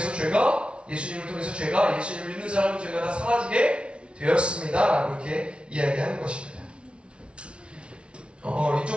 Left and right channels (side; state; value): left; late; 0.059 ms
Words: 예수님을 통해서 예수님을 믿는 사람은 죄가 다 사라지게 되었습니다. 라고 이렇게 이야기하는 것입니다.